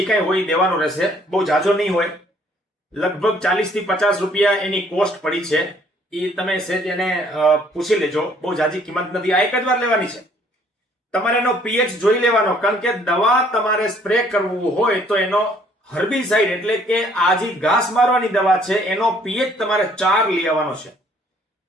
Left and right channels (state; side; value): normal; both; correlation 0.61